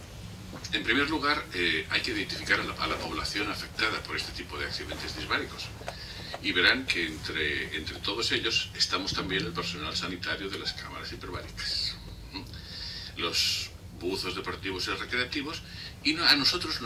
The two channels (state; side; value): identical; both; correlation 1.00